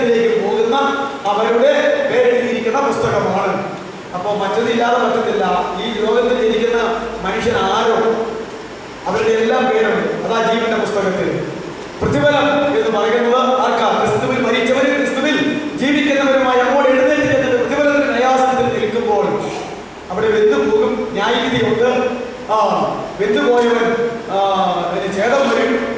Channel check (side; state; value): both; identical; correlation 1.00